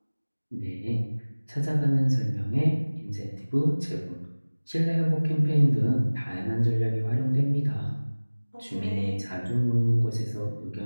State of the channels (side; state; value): both; inverted; correlation -1.00